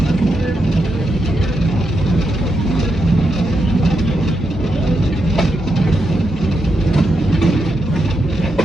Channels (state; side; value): normal; both; correlation 0.84